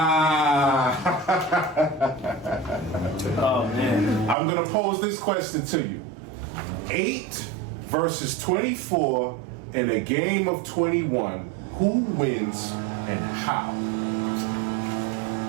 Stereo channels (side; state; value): left; drops out; at 4.4 s